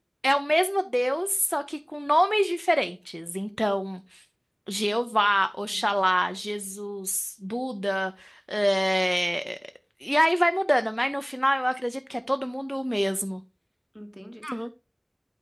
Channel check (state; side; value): identical; both; correlation 1.00